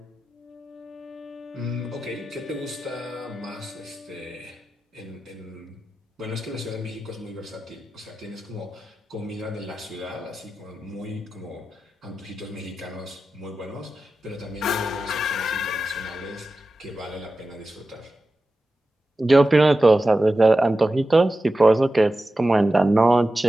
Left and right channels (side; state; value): both; normal; correlation 0.93